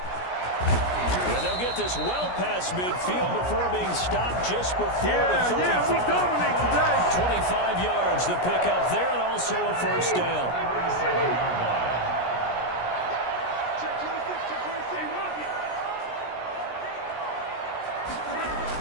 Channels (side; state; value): right; late; 17 ms